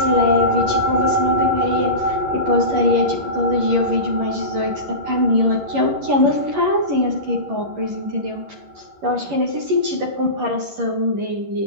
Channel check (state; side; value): late; left; 11 ms